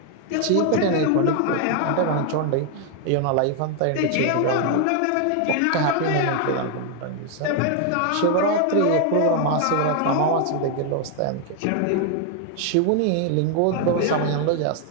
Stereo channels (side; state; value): both; different; correlation 0.00